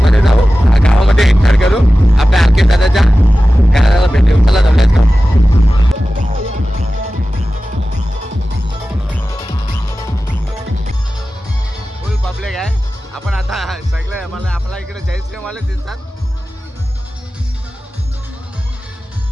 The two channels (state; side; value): normal; both; correlation 0.95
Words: जाऊ, गावामध्ये एंटर करू, आपल्या आरके दादाच्या घराला भेटू. चला जाऊयात का? फुल पब्लिक आहे. आपण आता सगळे मला आपल्या इकडे जयश्रीराम वाले दिसतात.